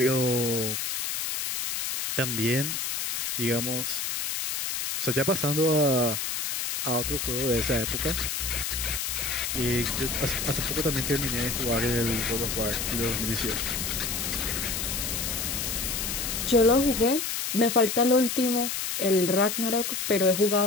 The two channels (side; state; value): left; noise; hiss, 2 dB below the sound